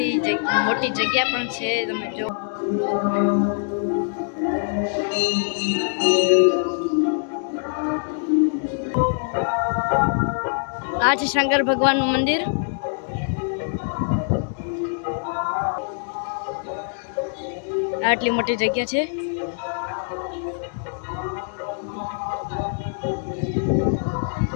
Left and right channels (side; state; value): right; silent; digital silence